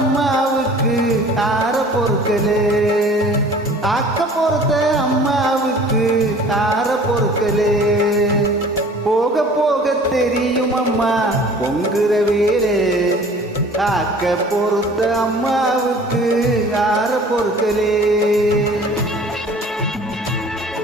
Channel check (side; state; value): both; normal; correlation 0.48